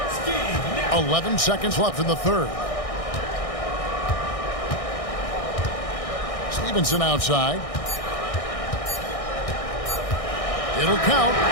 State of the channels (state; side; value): late; right; 1.6 ms